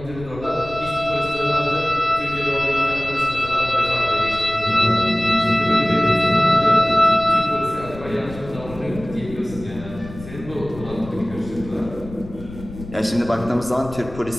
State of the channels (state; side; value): noise; left; rumble, 14 dB below the sound